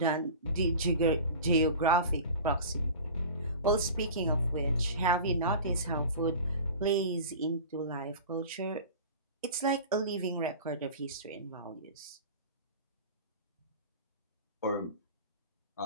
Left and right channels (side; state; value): both; inverted; correlation -0.36